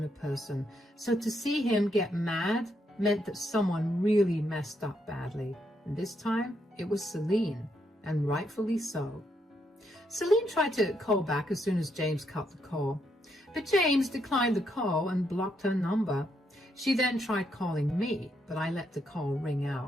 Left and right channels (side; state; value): both; normal; correlation 0.77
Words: a person, so to see him get mad meant that someone really messed up badly. And this time, it was Celine, and rightfully so. Celine tried to call back as soon as James cut the call, but James declined the call and blocked her number. She then tried calling me, but I let the call ring